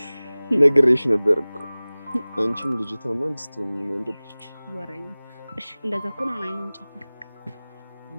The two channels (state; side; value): inverted; both; correlation -0.99